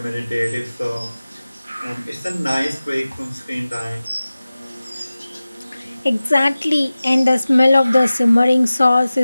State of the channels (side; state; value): both; inverted; correlation -0.97